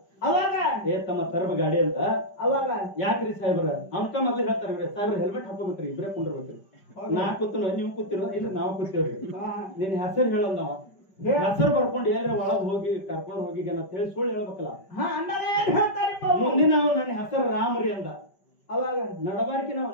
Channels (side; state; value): right; late; 5.1 ms